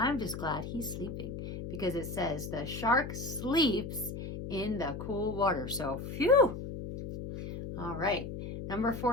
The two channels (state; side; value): noise; left; hum, 7 dB below the sound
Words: just glad he's sleeping because it says the shark sleeps in the cool water. So, phew. All right. Number